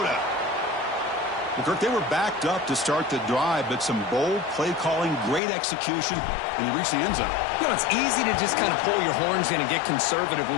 Well, Kirk, they were backed up to start the drive, but some bold play calling, great execution, and he reached the end zone. You know, it's easy to just kind of pull your horns in and get conservative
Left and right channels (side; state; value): right; drops out; at 5.4 s